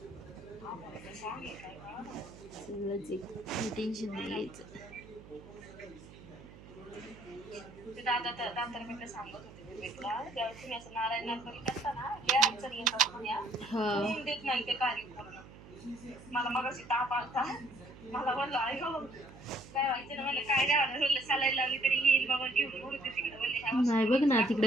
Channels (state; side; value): noise; right; hum, 18 dB below the sound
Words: आभाळाचं song आहे काय बा. सगळंच एक टेन्शन नाही घ्यायचं. ते दादा सांगत होते विवेकला, जेव्हा तुम्ही असं नारायण नर्मली करता ना, लय अडचणी येतात म्हण्या. होऊन देत नाही ते कार्य पूर्ण. मला मगाशी ताप आलता, मला म्हणलं आई हो काय व्हायचं ना, मला काय नाही म्हणलं सलाईन लावली तरी येईल बाबा घेऊन उडते तिकडे बोलले. नाही बघ ना